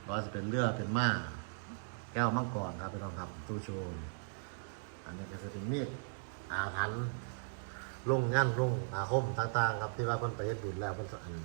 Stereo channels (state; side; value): silent; left; digital silence